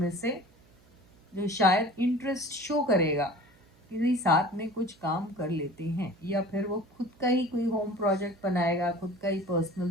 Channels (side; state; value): right; noise; hum, 29 dB below the sound